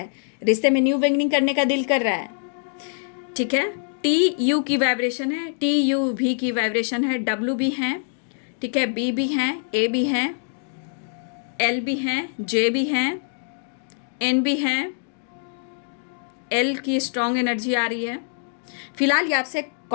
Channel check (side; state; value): right; silent; digital silence